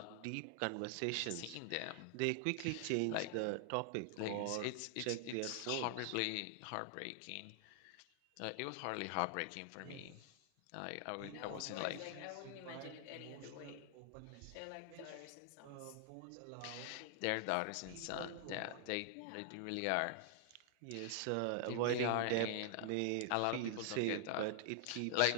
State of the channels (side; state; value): both; different; correlation -0.01